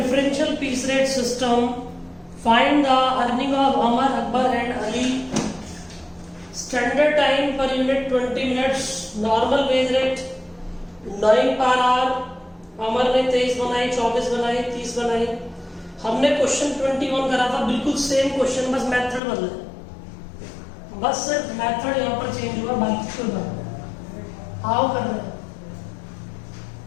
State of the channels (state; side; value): drops out; right; at 19.2 s